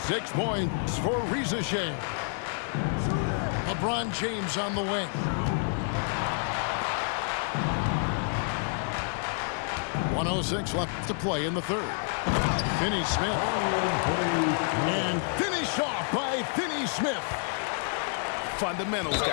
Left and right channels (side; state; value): right; silent; 59 dB below the other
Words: 6 points for Rizachet. LeBron James on the wing. 1:06 left to play in the third. Finney-Smith. And finished off by Finney-Smith. Fundamentals,